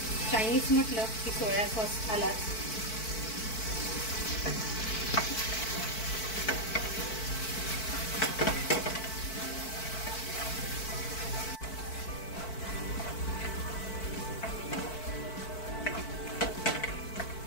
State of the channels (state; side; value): late; right; 4.5 ms